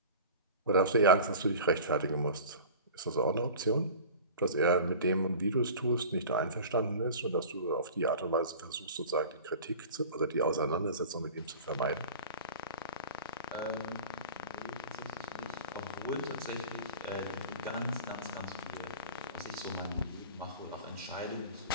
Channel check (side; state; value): both; inverted; correlation -0.38